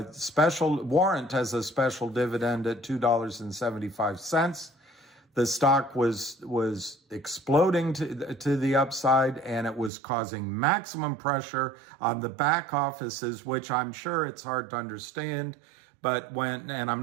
special warrant as a special dividend at $2.75. The stock was exploding to the upside, and it was causing maximum pressure on the back offices, which I'm sure it's hard to understand. But I'm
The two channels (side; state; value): left; drops out; at 9.9 s